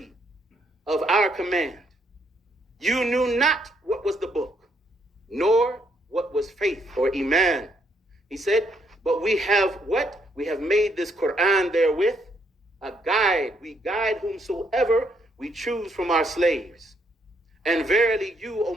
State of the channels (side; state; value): both; normal; correlation 0.72